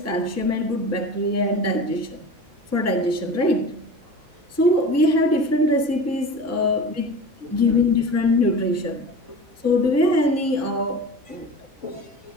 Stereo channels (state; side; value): normal; both; correlation 0.34